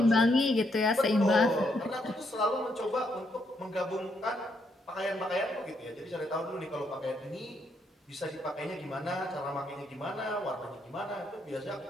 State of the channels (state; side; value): normal; both; correlation 0.75